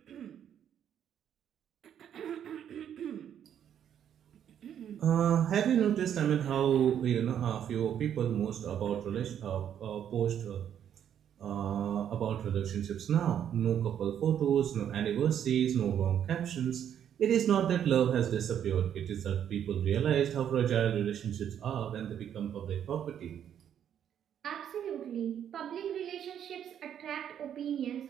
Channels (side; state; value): left; quieter; 9.4 dB